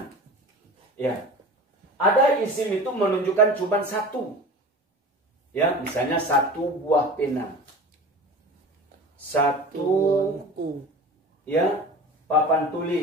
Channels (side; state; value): both; normal; correlation 0.36